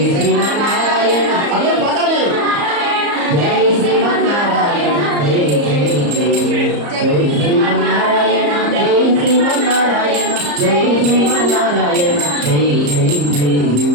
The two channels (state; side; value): late; left; 34 ms